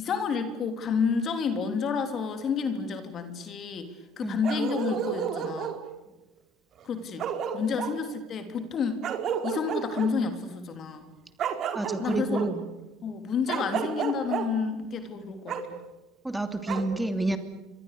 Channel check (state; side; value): normal; both; correlation 0.61